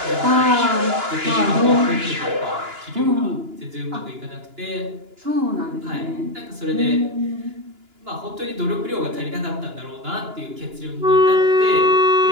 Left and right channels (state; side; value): late; left; 2.9 ms